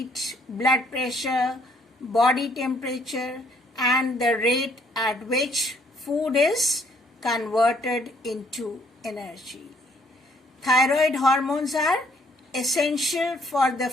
blood pressure, body temperature, and the rate at which food is converted into energy. Thyroid hormones are essential for the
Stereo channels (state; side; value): normal; both; correlation 0.65